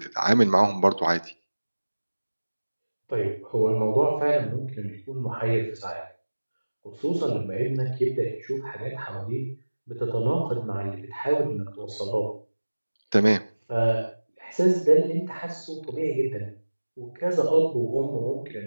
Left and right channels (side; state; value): both; inverted; correlation -1.00